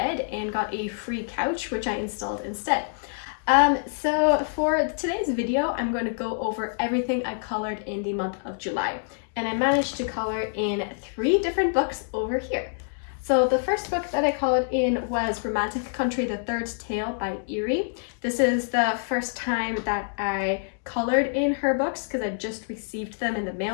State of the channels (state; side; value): silent; right; digital silence